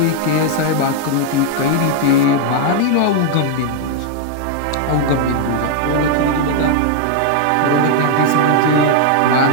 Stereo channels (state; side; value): different; both; correlation 0.00